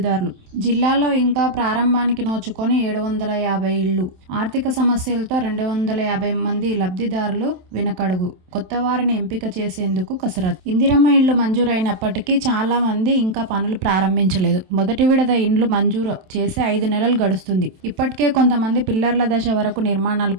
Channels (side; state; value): left; late; 27 ms